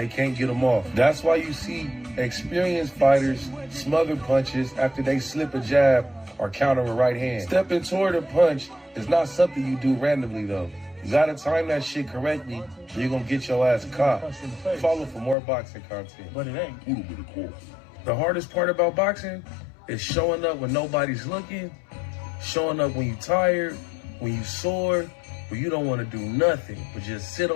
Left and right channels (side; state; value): right; drops out; at 15.4 s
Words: can't get them off. That's why you see experienced fighters smother punches after they slip a jab or counter a right hand. Stepping toward a punch is not something you do randomly, though. You gotta time that shit correctly, or you're gonna get your ass caught. Follow for more boxing content. But it ain't. The hardest part about boxing is showing up when nobody's looking, showing up when you're tired, when you're sore, when you don't want to do nothing but just sit